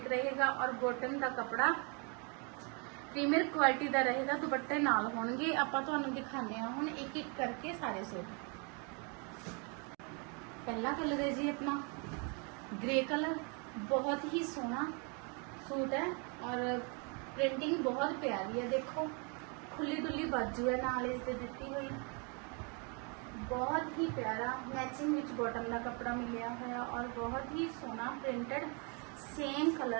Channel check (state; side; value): quieter; left; 34.8 dB